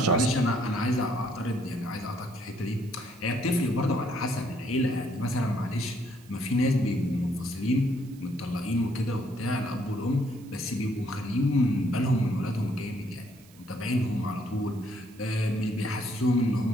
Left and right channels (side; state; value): right; noise; hiss, 26 dB below the sound